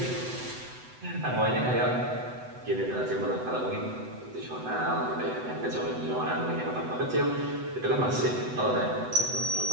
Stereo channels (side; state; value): left; late; 8.0 ms